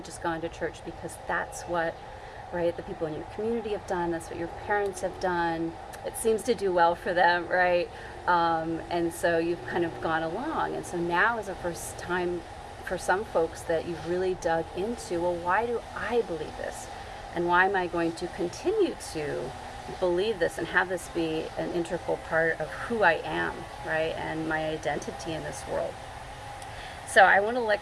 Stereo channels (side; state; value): both; identical; correlation 1.00